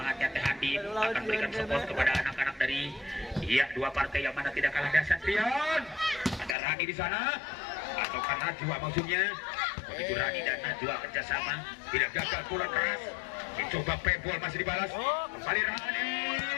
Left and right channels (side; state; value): right; drops out; at 6.6 s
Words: Teh Adin akan berikan support kepada anak-anak dari dua partai yang mana tidak kalah dahsyat. Rian, ada Rani di sana atau karena Najwa maksudnya. Begitu Rani dan Najwa kerjasama, tidak gagal, pukulan keras. Dicoba pebble, masih dibalas. Kembali Rani,